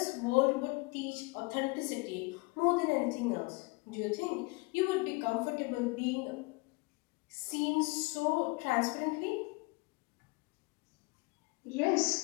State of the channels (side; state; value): right; quieter; 26.5 dB